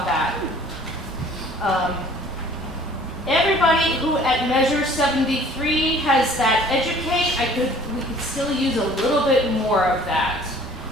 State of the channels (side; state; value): both; normal; correlation 0.52